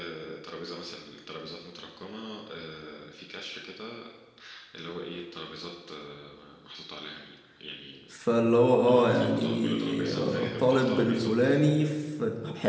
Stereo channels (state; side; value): identical; both; correlation 1.00